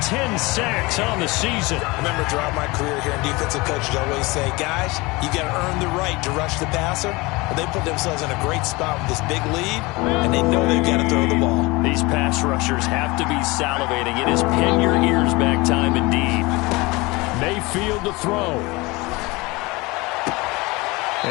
10 sacks on the season. I remember throughout my career here in defensive coaches always say, guys, you got to earn the right to rush the passer. Well, they put themselves in a great spot with this big lead, and they know they've got to throw the ball. These pass rushers have to be salivating. It is pin your ears back time indeed. Mayfield to throw.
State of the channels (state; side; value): quieter; right; 23.6 dB